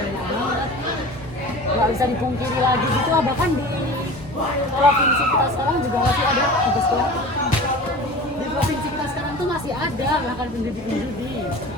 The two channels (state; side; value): normal; both; correlation 0.37